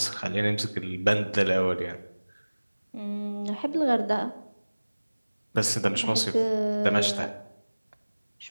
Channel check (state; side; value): inverted; both; correlation -1.00